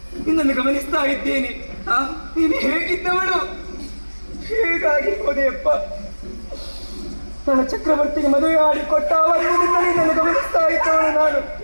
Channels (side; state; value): both; inverted; correlation -1.00